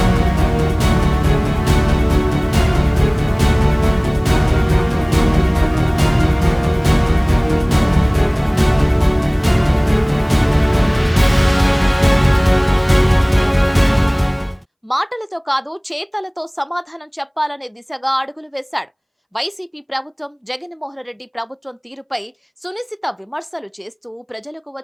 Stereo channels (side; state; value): both; identical; correlation 1.00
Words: మాటలతో కాదు, చేతలతో సమాధానం చెప్పాలనే దిశగా అడుగులు వేశాడు. వైసీపీ ప్రభుత్వం, జగన్మోహన్ రెడ్డి ప్రభుత్వం తీరుపై సునిశిత విమర్శలు చేస్తూ ప్రజలకు